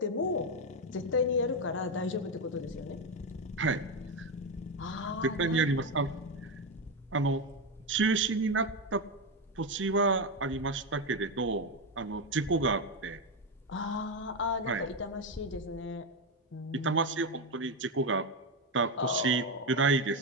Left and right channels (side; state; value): both; normal; correlation 0.10